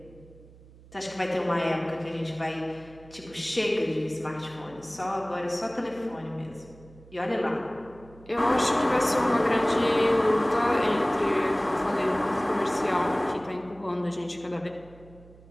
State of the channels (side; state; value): right; noise; hum, 22 dB below the sound